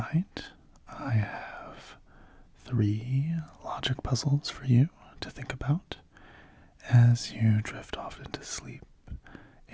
I have 3 logic puzzles for you to think about as you drift off into sleep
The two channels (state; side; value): identical; both; correlation 1.00